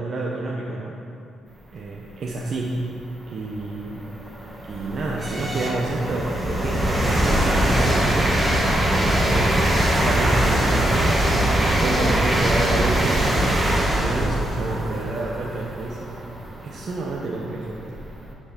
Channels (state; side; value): normal; both; correlation 0.82